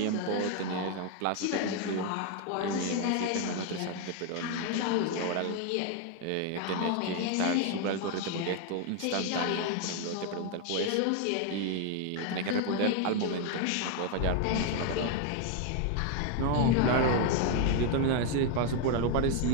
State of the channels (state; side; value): different; both; correlation 0.01